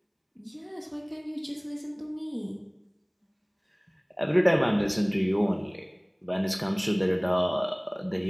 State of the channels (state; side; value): identical; both; correlation 1.00